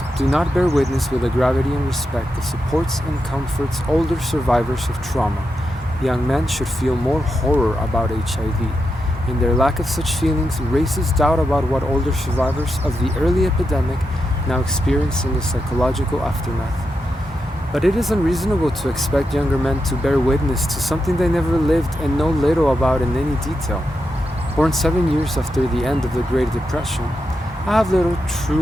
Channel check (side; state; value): both; normal; correlation 0.86